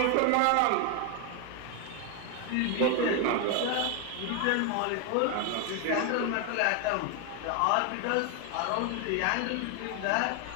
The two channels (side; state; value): both; different; correlation 0.01